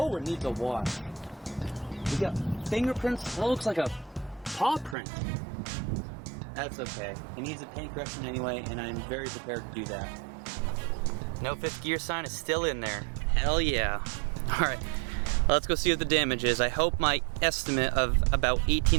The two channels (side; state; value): left; drops out; at 5.0 s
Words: it needs a wash. We got fingerprints. That looks like a paw print. That's okay. It needs a paint correction anyway, and I'm very prepared to do that. No fifth gear sign is still in there. Hell yeah. All right, let's go see what the damage is. I hope my estimate of about